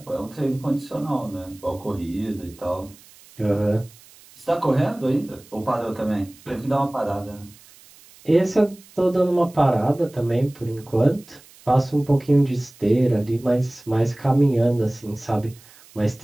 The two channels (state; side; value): noise; right; hiss, 24 dB below the sound